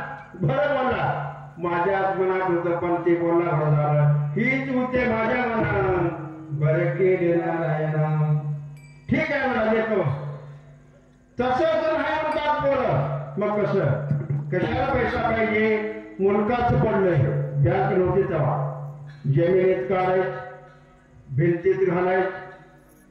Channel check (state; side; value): identical; both; correlation 1.00